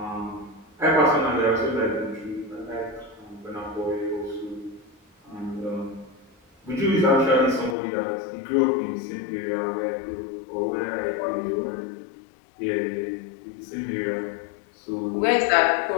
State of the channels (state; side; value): drops out; right; at 7.8 s